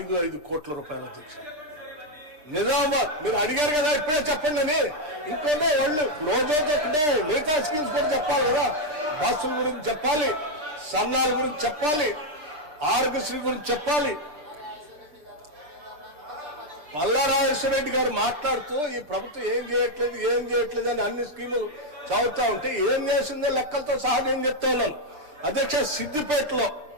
కోట్ల రూపాయల అధ్యక్ష. నిజామాబాద్ మీరు అడిగారు కదా, ఇప్పుడే చెప్పండి అని. ఇంకోటే వాళ్ళు రోజుతో మిగతా స్కీమ్స్ కూడా చెప్పాలి కదా. బస్సుల గురించి చెప్పాలి, సన్నాల గురించి చెప్పాలి, ఆరోగ్యశ్రీ గురించి చెప్పాలి. పల్లా రాజేశ్వర రెడ్డి గారు మాట్లాడుతూ ఈ ప్రభుత్వం ఏం చేయట్లేదు అని అన్ని స్కీములు చదువుతా ఉంటే ఏం చేసిందో లెక్కలతో సహా నేను చెప్తా ఉన్నాను అధ్యక్ష.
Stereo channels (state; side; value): late; left; 6.6 ms